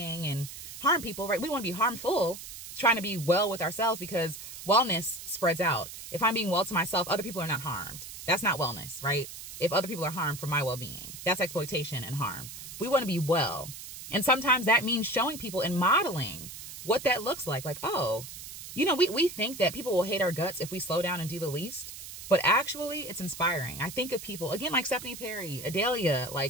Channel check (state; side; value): noise; right; hiss, 12 dB below the sound